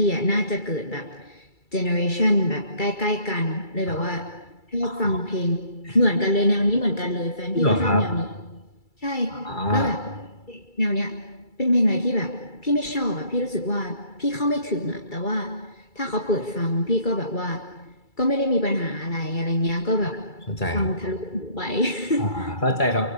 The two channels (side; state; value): right; late; 2.3 ms